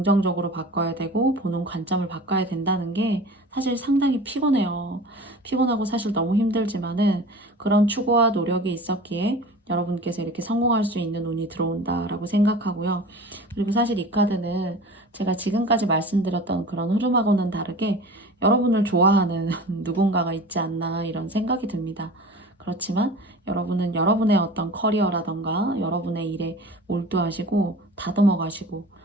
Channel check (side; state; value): both; normal; correlation 0.38